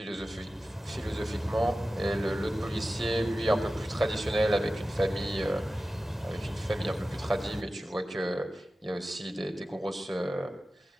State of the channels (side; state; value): both; normal; correlation 0.95